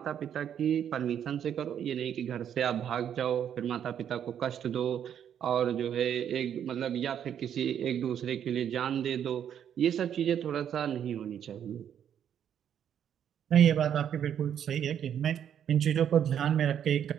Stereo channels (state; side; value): quieter; left; 9.2 dB